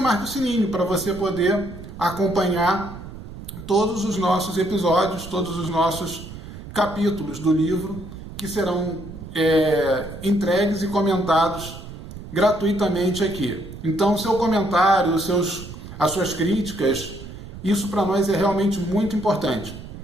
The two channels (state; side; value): noise; right; rumble, 13 dB below the sound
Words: o sininho para você poder acompanhar todos os nossos episódios, todos os nossos capítulos do livro que serão entregues e comentados gratuitamente aqui. Então, seu comentário, as suas críticas, isso para nós é realmente muito importante.